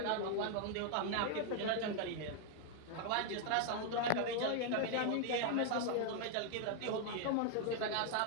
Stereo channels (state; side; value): different; both; correlation 0.00